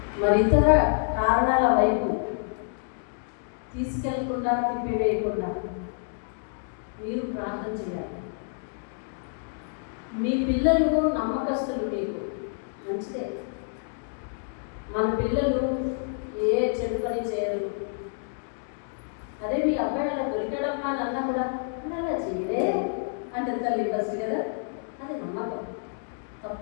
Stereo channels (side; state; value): right; silent; digital silence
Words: మరి ఇతర కారణాల వైపు తీసుకెళ్లకుండా, తిప్పివేయకుండా మీరు ప్రార్థన చేయాలి. మీ పిల్లలు నమ్మకస్తులు, మీకు మంచిదే. మన పిల్లలు ఏ చెడు పని చేయరు. అదే మీ అబ్బాయి అలా దొరికాడమ్మా అని అన్నా కూడా అలా చేయలే అంటే తల్లి ఫస్ట్ కదా, అది నమ్మకం.